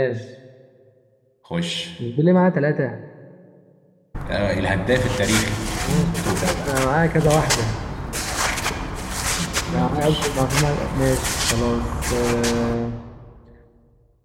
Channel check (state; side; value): identical; both; correlation 1.00